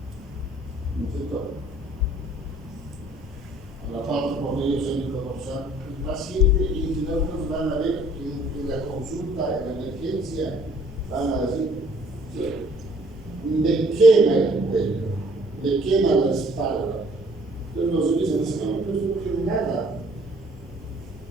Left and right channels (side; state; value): both; normal; correlation 0.58